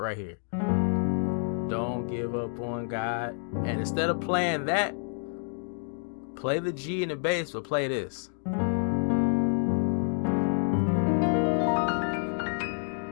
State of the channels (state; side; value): silent; right; 59 dB below the other